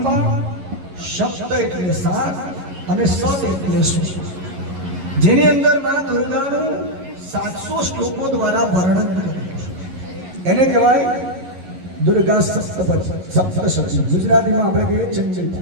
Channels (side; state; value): left; late; 11 ms